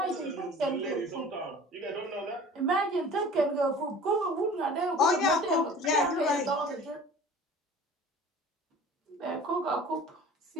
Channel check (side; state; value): both; normal; correlation 0.44